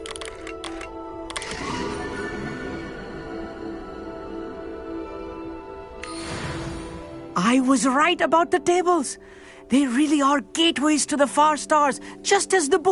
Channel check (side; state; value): both; identical; correlation 1.00